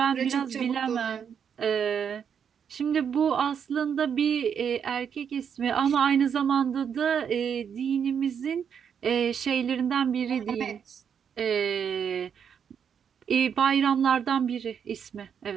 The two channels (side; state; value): left; quieter; 7.6 dB